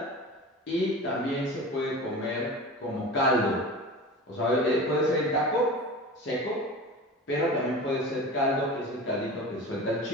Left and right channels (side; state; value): both; normal; correlation 0.33